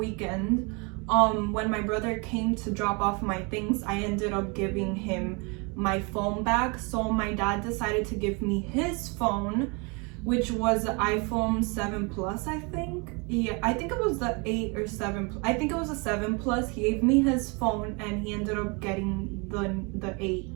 when my brother came to drop off my things, I ended up giving him my phone back. So my dad decided to give me his phone, which was the iPhone 7 Plus, I think. Yeah, I think it was the 8 or 7. I think it was a 7 Plus. He gave me his phone and he ended up getting the 8.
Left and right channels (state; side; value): quieter; left; 31.1 dB